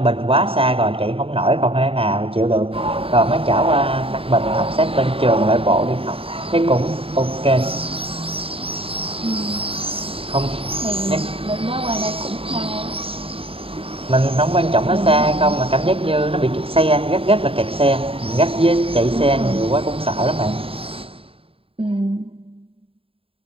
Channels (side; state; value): left; late; 0.27 ms